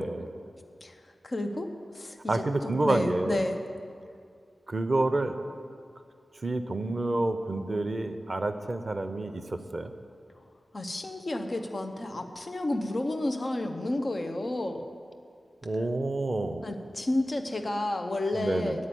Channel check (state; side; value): normal; both; correlation 0.95